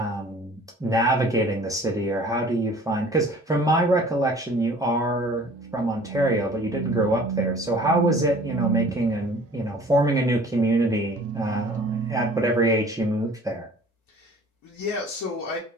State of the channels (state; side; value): normal; both; correlation 0.49